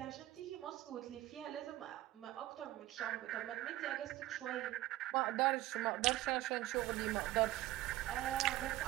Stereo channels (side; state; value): left; quieter; 16.1 dB